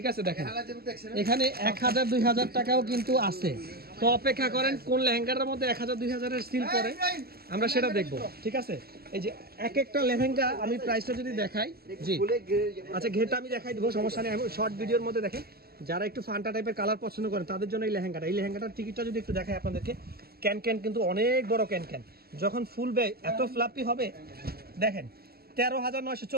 আছে। দেখেন এখানে 1000-2000 টাকাও কিন্তু আছে। তো অপেক্ষা করেন কোন লেহেঙ্গাটার মধ্যে 1000-2000 এর সিল পরে, আমরা সেটা দেখবো, ঠিক আছে। এই যে এক একটা লেহেঙ্গা আমি প্রাইসটা যদি দেখাই, জি আচ্ছা ঘেরটা আমি দেখাই দেবো, সমস্যা নেই। আমি শর্ট ভিডিওর মধ্যে দেখেন, যারা একটু ফান্টা টাইপের কালার পছন্দ করেন তাদের জন্য এই লেহেঙ্গাটার টিকিটটা যদি একটু দেখাই আপনাদেরকে। ক্যান কিন্তু অনেক বড় ক্যান, যখন ফুলবে এত ফ্লাপি হবে। দেখেন 13,900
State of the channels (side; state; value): left; late; 0.45 ms